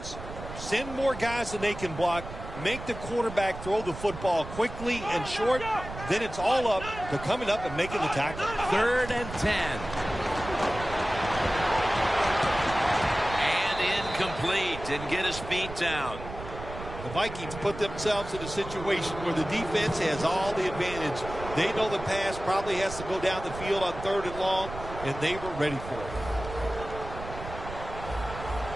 Send more guys than they can block. Make the quarterback throw the football quickly and short. Then it's all up to coming up and making the tackle. 3rd and 10. And incomplete. Didn't get his feet down. The Vikings put themselves in a situation where the defense has all the advantage. They know the pass probably has to go down the field on 3rd and long, and they were ready for it.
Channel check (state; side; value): noise; right; rumble, 11 dB below the sound